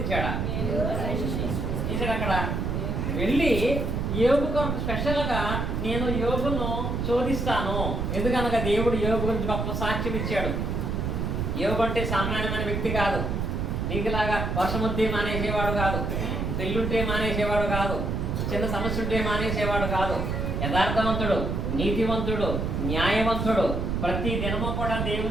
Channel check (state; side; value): noise; right; rumble, 1 dB below the sound